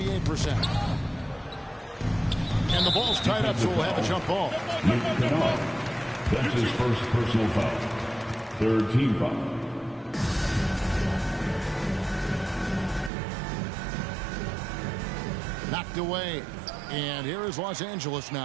And the ball's tied up, so we'll have a jump ball. That's his first personal foul. 3rd team foul. Knocked away. And here is Los Angeles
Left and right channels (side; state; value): left; drops out; at 13.1 s